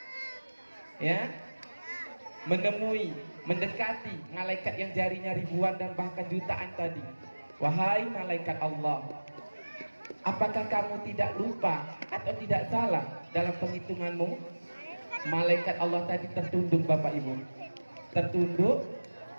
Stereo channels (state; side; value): inverted; both; correlation -1.00